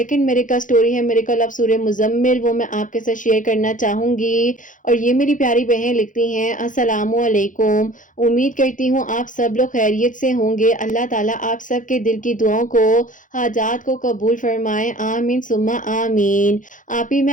میریکل سٹوری ہے میریکل آف سورہ مزمل, وہ میں آپ کے ساتھ شیئر کرنا چاہوں گی. اور یہ میری پیاری بہن لکھتی ہیں, السلام علیکم, امید کرتی ہوں آپ سب لوگ خیریت سے ہوں گے. اللہ تعالیٰ آپ سب کے دل کی دعاؤں کو, حاجات کو قبول فرمائے. آمین ثم آمین. آپ ہی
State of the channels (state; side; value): late; right; 0.38 ms